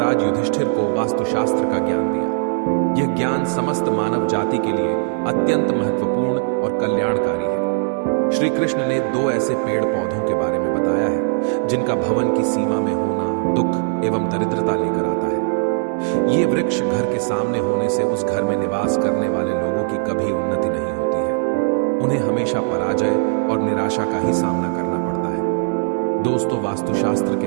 युधिष्ठिर को वास्तुशास्त्र का ज्ञान दिया। यह ज्ञान समस्त मानव जाति के लिए अत्यंत महत्वपूर्ण और कल्याणकारी है। श्री कृष्ण ने दो ऐसे पेड़ पौधों के बारे में बताया है जिनका भवन की सीमा में होना दुख एवं दरिद्रता लेकर आता है। ये वृक्ष घर के सामने होने से उस घर में निवास करने वाले लोगों की कभी उन्नति नहीं होती है। उन्हें हमेशा पराजय और निराशा का ही सामना करना पड़ता है। दोस्तों, वास्तुशास्त्र के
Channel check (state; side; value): silent; left; digital silence